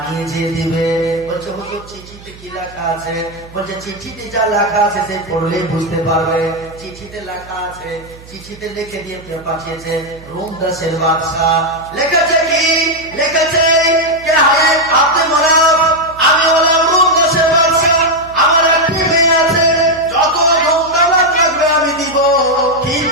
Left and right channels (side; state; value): right; noise; hum, 20 dB below the sound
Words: নিয়ে যেয়ে দিবে। বলছে হুজুর চিঠিতে কি লেখা আছে? বলছে চিঠিতে যা লেখা আছে সে পড়লেই বুঝতে পারবে। চিঠিতে লেখা আছে, চিঠিতে লিখে দিয়ে পাঠিয়েছে রোম দেশের বাদশা। লিখেছে কি? লিখেছে কে হায় আব্দুল মানাফ, আমি হলাম রোম দেশের বাদশা, আমার একটি মেয়ে আছে, যত ধনদৌলত লাগবে আমি দিব,